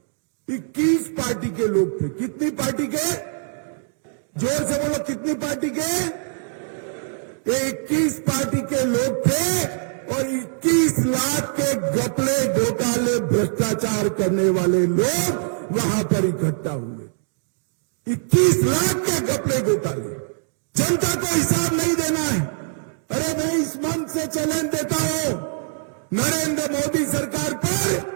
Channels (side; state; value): left; silent; digital silence